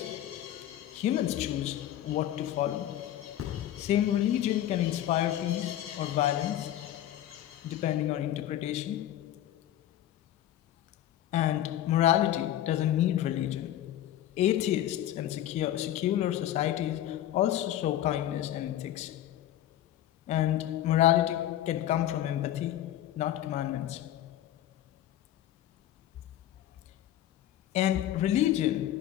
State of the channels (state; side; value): quieter; right; 12.5 dB